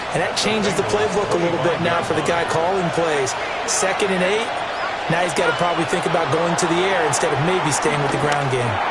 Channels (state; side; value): identical; both; correlation 1.00